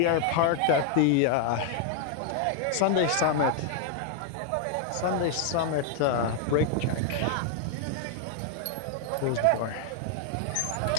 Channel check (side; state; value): both; different; correlation 0.00